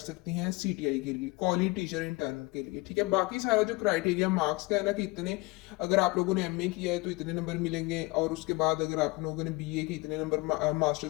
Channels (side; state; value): right; quieter; 23.7 dB